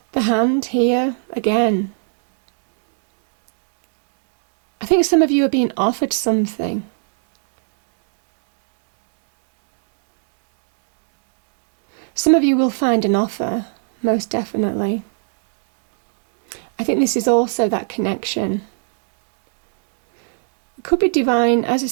the hand here again. I think some of you are being offered something. Some of you will find an offer, most definitely. I think this is also that connection. It could be divine. As I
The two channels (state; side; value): silent; left; digital silence